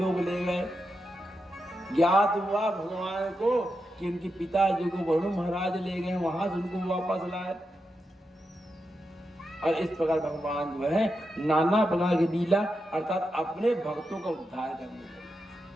ले गए। ज्ञात हुआ भगवान को कि उनके पिताजी को वरुण महाराज ले गए, वहां से उनको वापस लाए। और इस प्रकार भगवान जो है नाना प्रकार की लीला अर्थात अपने भक्तों का उद्धार करने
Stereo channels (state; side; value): normal; both; correlation 0.87